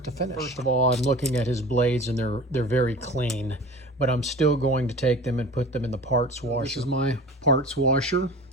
to finish. First of all, I'm looking at his blades and they're very clean, but I'm still going to take them and put them in the parts washer. This is my parts washer.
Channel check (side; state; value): both; normal; correlation 0.39